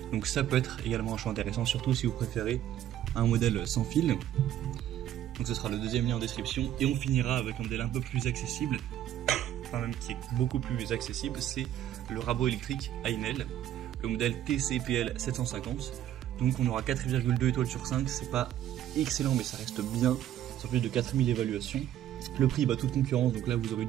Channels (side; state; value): left; quieter; 11.7 dB